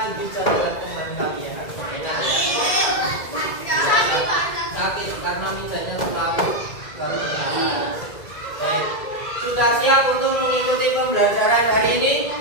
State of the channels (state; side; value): late; right; 2.0 ms